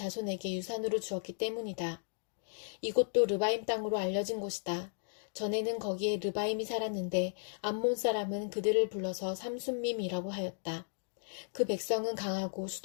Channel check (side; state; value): right; silent; digital silence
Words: 유산으로 주었기 때문이다. 이곳도 르바임 땅으로 알려진 곳이다. 전에는 거기에 르바임이 살았는데 암몬 사람은 그들을 불러서 삼순밈이라고 하였다. 그 백성은 강하고